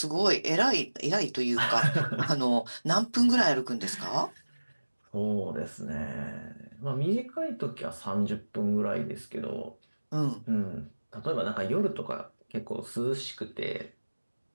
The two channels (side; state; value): both; inverted; correlation -1.00